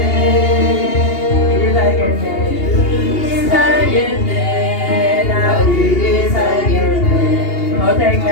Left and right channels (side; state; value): right; late; 2.8 ms